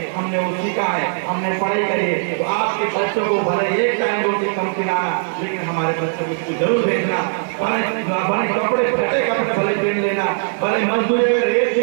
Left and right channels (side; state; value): left; silent; digital silence